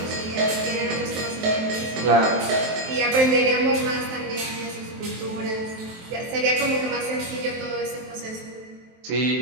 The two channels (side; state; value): left; late; 23 ms